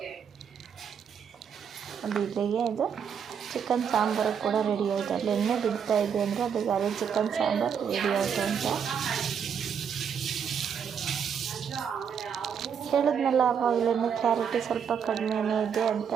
ಅದು ಇಲ್ಲಿಗೆ ಇದು ಚಿಕನ್ ಸಾಂಬಾರು ಕೂಡ ರೆಡಿ ಆಯಿತು. ಅಲ್ಲಿ ಎಣ್ಣೆ ಬಿಡ್ತಾ ಇದೆ ಅಂದರೆ ಅದಕ್ಕೆ ಅದೇ ಚಿಕನ್ ಸಾಂಬಾರು ರೆಡಿ ಆಯಿತು ಅಂತ ಹೇಳಿದ್ನಲ್ಲ. ಆವಾಗಲೇ ಕ್ಲಾರಿಟಿ ಸ್ವಲ್ಪ ಕಡಿಮೆನೇ ಇದೆ ಅಂತ.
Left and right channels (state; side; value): quieter; left; 7.4 dB